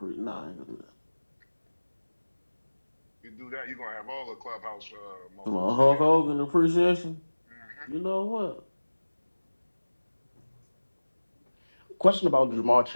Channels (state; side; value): inverted; both; correlation -1.00